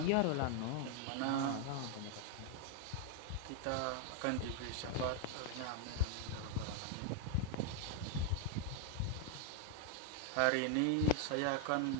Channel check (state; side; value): different; both; correlation 0.00